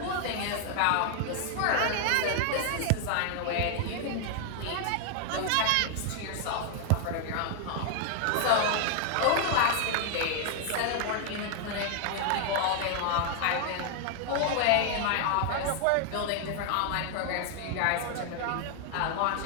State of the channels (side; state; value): both; different; correlation 0.00